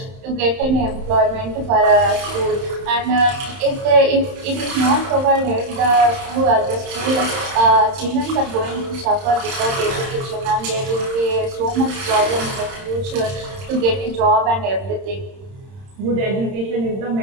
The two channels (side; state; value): left; late; 31 ms